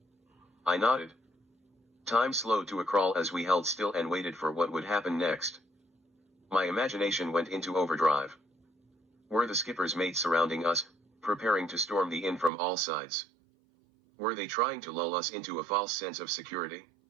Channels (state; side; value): drops out; left; at 12.5 s